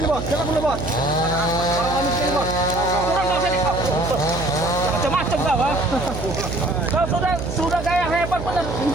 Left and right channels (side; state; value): right; noise; hum, 7 dB below the sound